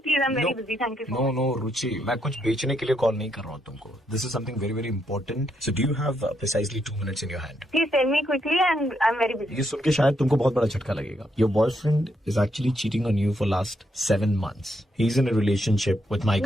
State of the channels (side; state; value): both; normal; correlation 0.78